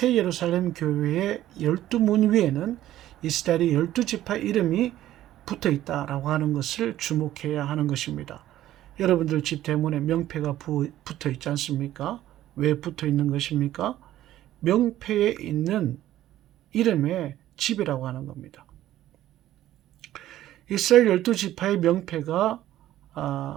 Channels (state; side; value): quieter; left; 13.5 dB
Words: 예루살렘 교회의 12문 위에는 이스라엘의 12지파 이름이 붙어 있다라고 하는 것을 주목해야 하는 것입니다. 여러분들 집 대문에 명패가 붙어 있지 않습니까? 왜 붙어 있는 것입니까? 명패에 있는 이름의 집이라고 하는 겁니다. 이스라엘 12지파의 명패가